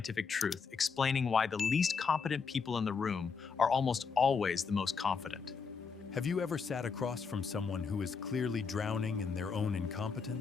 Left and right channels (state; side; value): quieter; right; 5.5 dB